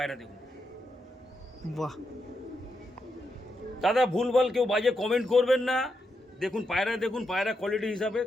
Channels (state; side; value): normal; both; correlation 0.83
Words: দেখুন বাহ, দাদা, ভুলভাল কেউ বাজে কমেন্ট করবেন না। দেখুন পায়রা, দেখুন পায়রা কোয়ালিটি হিসাবে